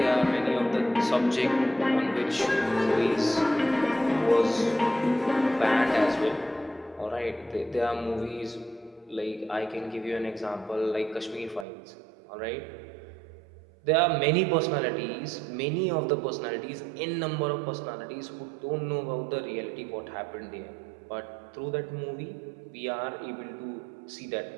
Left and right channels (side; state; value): left; drops out; at 11.7 s